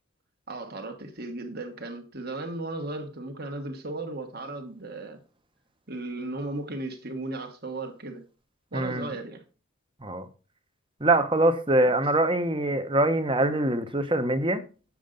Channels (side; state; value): both; normal; correlation 0.37